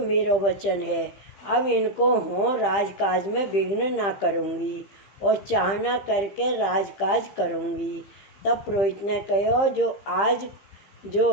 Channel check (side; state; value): right; late; 15 ms